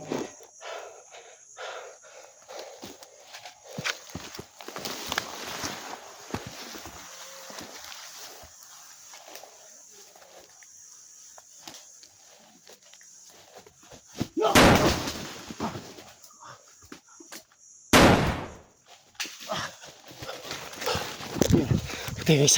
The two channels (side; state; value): both; identical; correlation 1.00